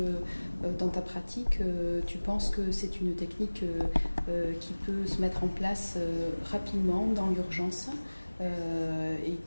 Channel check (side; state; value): both; inverted; correlation -1.00